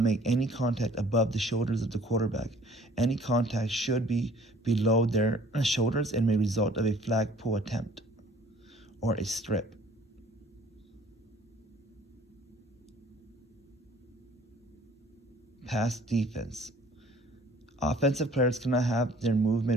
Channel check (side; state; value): both; normal; correlation 0.54